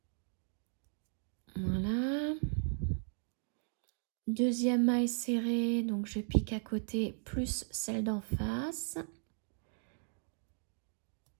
Voilà. Deuxième maille serrée, donc je pique à côté, plus celle d'en face.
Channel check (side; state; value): left; silent; 53 dB below the other